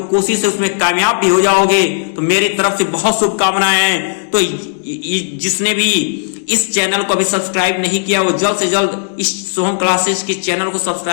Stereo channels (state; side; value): silent; right; digital silence